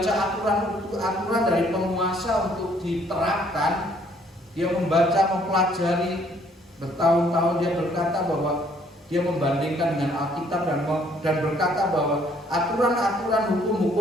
aturan dari penguasa untuk diterapkan. Dia membaca, mempelajari bertahun-tahun. Dia berkata bahwa dia membandingkan dengan Alkitab dan berkata bahwa aturan-aturan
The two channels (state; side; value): normal; both; correlation 0.63